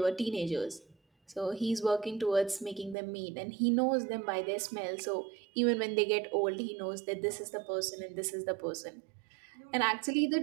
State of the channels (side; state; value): left; drops out; at 3.0 s